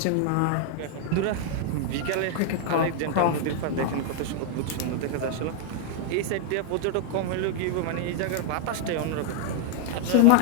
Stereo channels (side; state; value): both; different; correlation 0.00